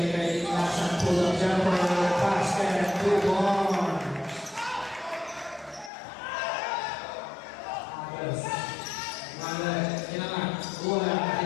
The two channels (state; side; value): drops out; right; at 5.9 s